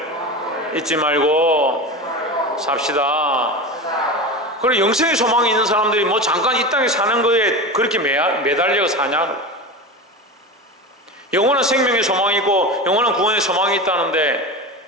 잊지 말고 삽시다. 그리고 영생의 소망이 있는 사람들이 뭐 잠깐 이 땅에 사는 거에 그렇게 매달려 사냐? 영원한 생명의 소망이 있고 영원한 구원의 소망이 있다는데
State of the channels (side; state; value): both; normal; correlation 0.26